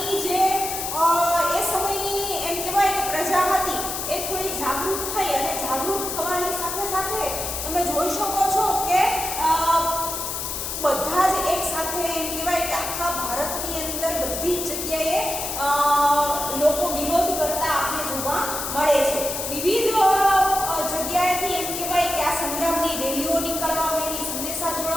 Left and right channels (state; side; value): noise; left; hiss, 4 dB below the sound